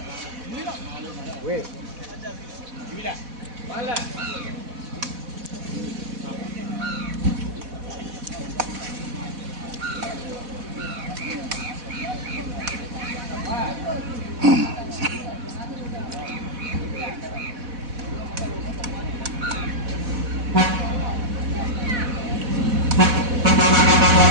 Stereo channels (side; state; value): left; late; 4.1 ms